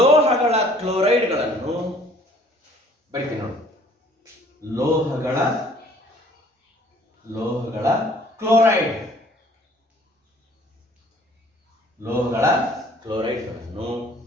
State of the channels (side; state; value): both; normal; correlation 0.56